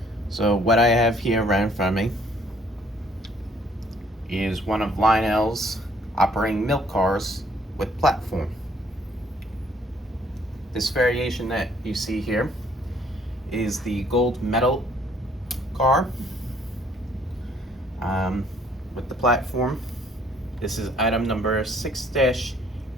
So what I have here right in front of me is one of Lionel's operating milk cars with platform. This variation that you see here is the gold medal car with the platform. This is item number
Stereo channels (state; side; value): normal; both; correlation 0.62